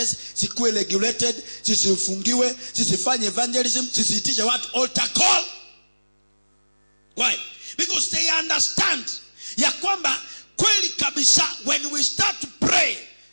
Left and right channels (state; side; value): inverted; both; correlation -1.00